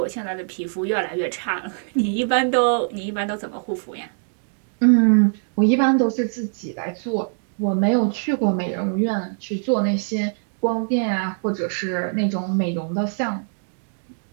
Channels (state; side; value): silent; left; digital silence